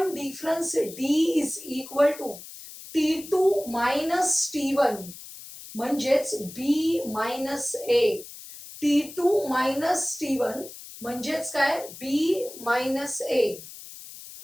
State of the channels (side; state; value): left; noise; hiss, 15 dB below the sound